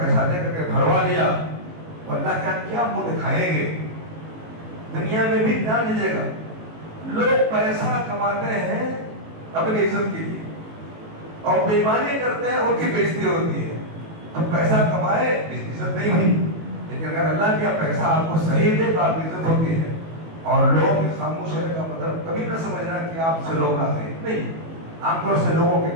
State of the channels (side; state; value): left; late; 18 ms